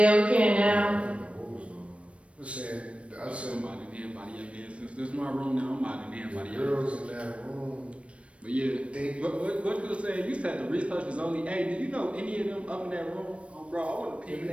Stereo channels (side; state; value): left; late; 0.062 ms